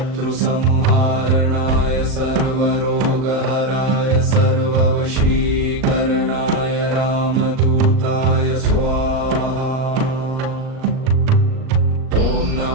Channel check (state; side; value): late; left; 38 ms